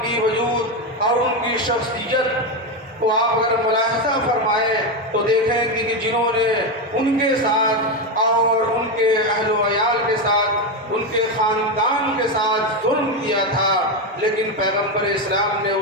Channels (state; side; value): normal; both; correlation 0.10